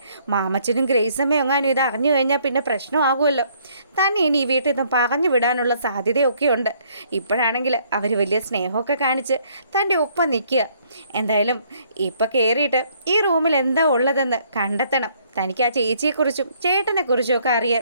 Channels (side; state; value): both; inverted; correlation -0.65